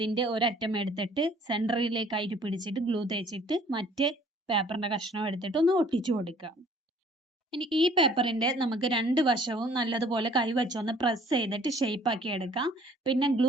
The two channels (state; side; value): normal; both; correlation 0.56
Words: ഒരറ്റം എടുത്തിട്ട് സെന്ററിലേക്കായിട്ട് പിടിച്ചിട്ട് ഗ്ലൂ തേച്ചിട്ട് മറ്റേ പേപ്പറിന്റെ കഷ്ണം എടുത്തിട്ട് ഒന്ന് ഒട്ടിച്ചു കൊടുക്കുക. ഇനി ഈ പേപ്പറിന്റെ നമുക്ക് 2 വശവും നല്ലതുപോലെ കൈവച്ചൊന്ന് പ്രസ് ചെയ്തിട്ട് ഷേപ്പ് ആക്കി എടുക്കാം. പിന്നെ